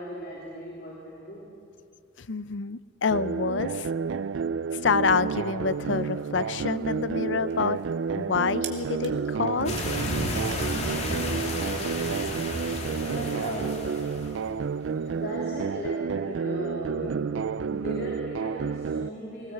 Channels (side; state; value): both; normal; correlation -0.02